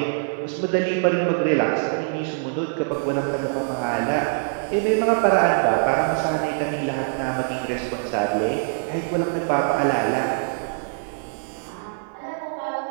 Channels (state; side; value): silent; left; 58 dB below the other